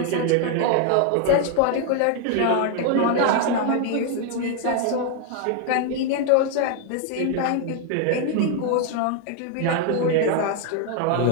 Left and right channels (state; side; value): different; both; correlation 0.01